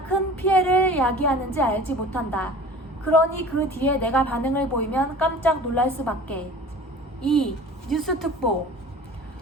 큰 피해를 야기하는지 알지 못한다. 그러니 그 뒤에 내가 반응을 보이면 깜짝 놀랄 수밖에. 2. 뉴스 특보.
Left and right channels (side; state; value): both; normal; correlation 0.42